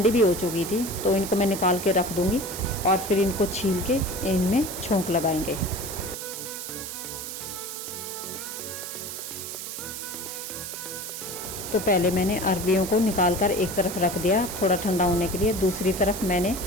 भी हो चुकी थी, तो इनको मैं निकाल के रख दूँगी और फिर इनको छील के इनमें छोंक लगाएंगे। तो पहले मैंने अरबियों को निकाल कर एक तरफ रख दिया थोड़ा ठंडा होने के लिए। दूसरी तरफ मैंने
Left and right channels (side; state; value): right; noise; hiss, 7 dB below the sound